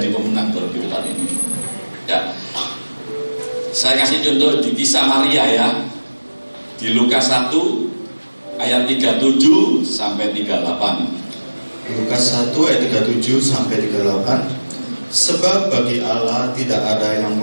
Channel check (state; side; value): inverted; both; correlation -1.00